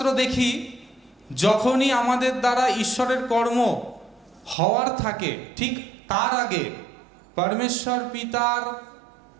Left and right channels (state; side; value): drops out; left; at 4.5 s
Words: দেখি, যখনই আমাদের দ্বারা ঈশ্বরের কর্ম হওয়ার থাকে ঠিক তার আগে পরমেশ্বর পিতার